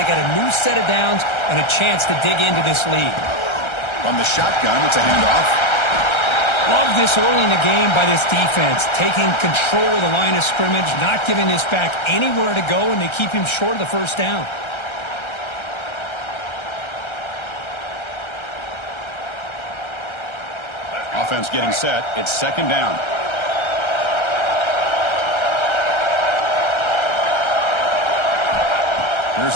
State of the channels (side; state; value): right; late; 1.3 ms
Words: got a new set of downs and a chance to dig into this lead. From the shotgun, it's a handoff. Love this early in the game by this defense, taking control of the line of scrimmage, not giving this back anywhere to go, and they keep him short of the first down. Offense getting set. It's second down.